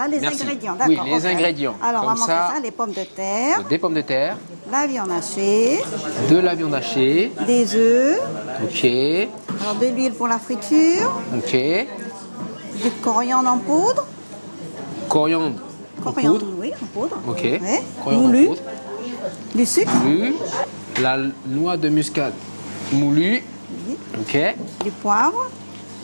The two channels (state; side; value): inverted; both; correlation -1.00